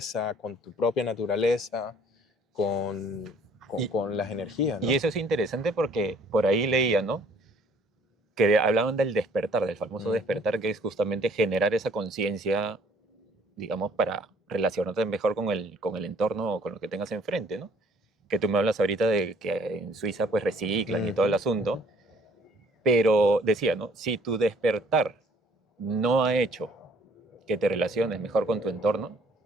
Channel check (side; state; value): both; normal; correlation 0.58